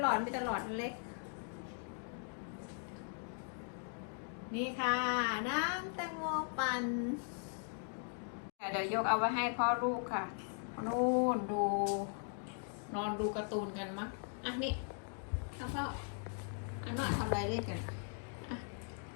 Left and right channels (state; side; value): silent; right; 52 dB below the other